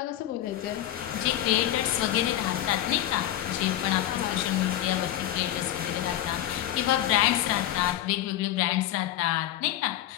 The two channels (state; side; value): quieter; right; 13.1 dB